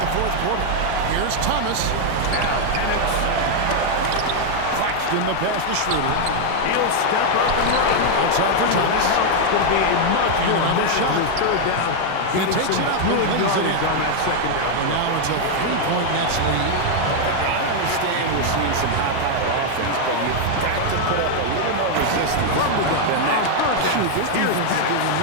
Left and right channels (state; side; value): different; both; correlation 0.00